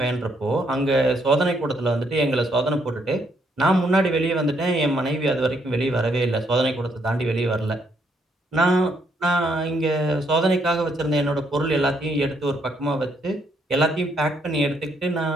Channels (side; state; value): both; normal; correlation 0.72